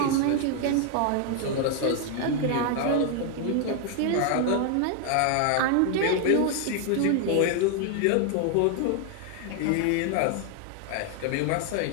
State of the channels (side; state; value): both; different; correlation 0.00